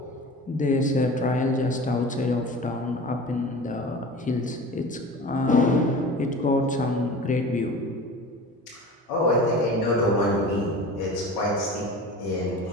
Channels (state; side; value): normal; both; correlation 0.37